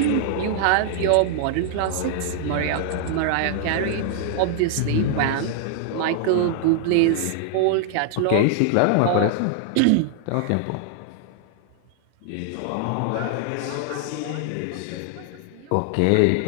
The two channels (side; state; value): both; different; correlation -0.01